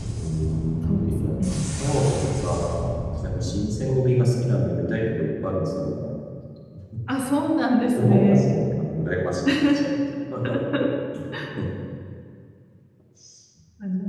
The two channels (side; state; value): both; identical; correlation 1.00